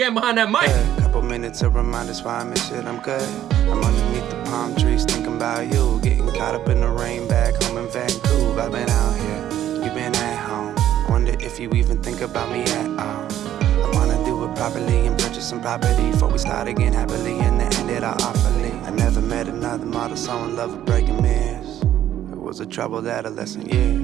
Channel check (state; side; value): quieter; left; 11.7 dB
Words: behind that mic. A couple minutes to remind us why I miss it, I'm good. I'm underneath the palm trees thinking about you. Getting caught up in the rain back home in Vancouver. I've been out here, you've been at home. Wonder if you even think about me at all. I wanna do it properly and purchase some property before we start again happily and then end it all awfully. I never met another model so in love with breaking mirrors. It was a troubled adolescent